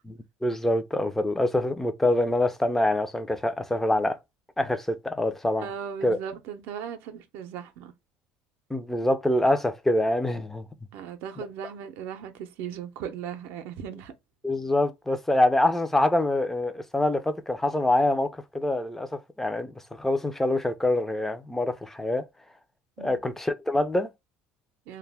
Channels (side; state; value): both; normal; correlation 0.88